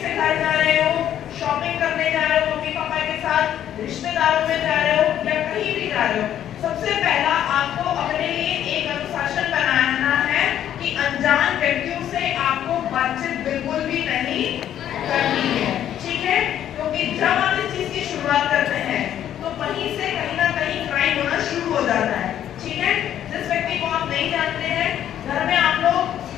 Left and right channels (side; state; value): right; quieter; 10.7 dB